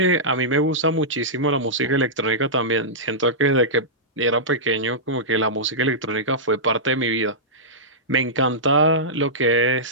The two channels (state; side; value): normal; both; correlation -0.14